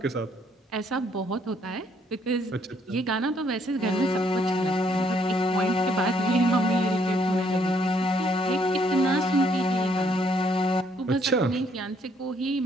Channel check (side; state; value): both; normal; correlation 0.68